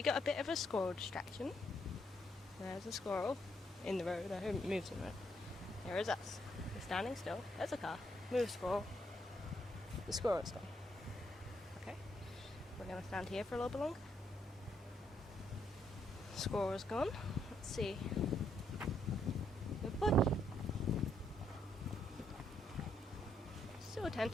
got a bit of a squirrel distraction. There's a squirrel in the road. I hope it moves in the road. There is us. We're standing still. There's a car. Move, squirrel. The squirrel's gone. Okay. We're going to stand here for a little bit longer. Squirrel's gone. Let's see. Good boy. So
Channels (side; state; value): both; normal; correlation 0.75